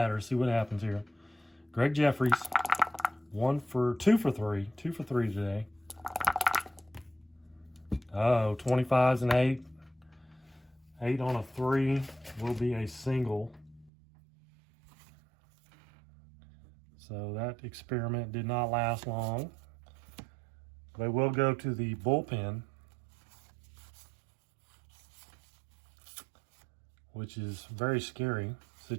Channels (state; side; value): drops out; left; at 13.9 s